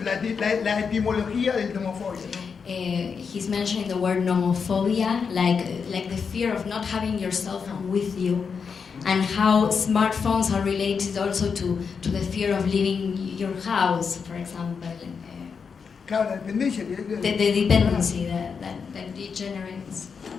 la etimología del nomofobia, ¿no? He's mentioning the word nomophobia, like the fear of not having your cell phone with you, and how smartphones are related also to the fear of leaving your house, for example. Claro, la dependencia. The dependency that degenerates.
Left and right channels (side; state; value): right; quieter; 5.9 dB